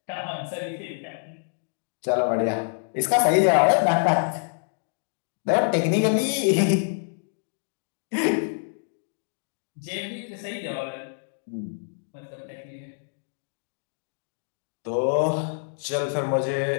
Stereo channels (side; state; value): right; silent; digital silence